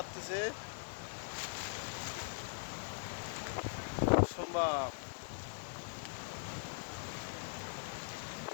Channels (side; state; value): right; silent; digital silence